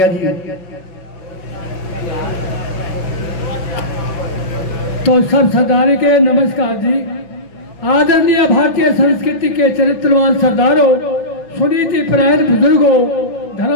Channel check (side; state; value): right; late; 5.9 ms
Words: जी। तो सब सरदारी के नमस्कार जी। आदरणीय भारतीय संस्कृति के चरित्रवान सरदारों, सुनीति परायण बुजुर्गों,